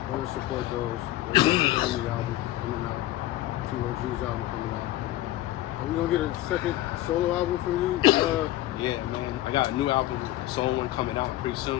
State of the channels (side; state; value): right; quieter; 15.3 dB